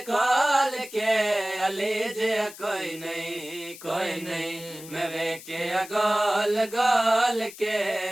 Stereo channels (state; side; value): noise; left; hiss, 16 dB below the sound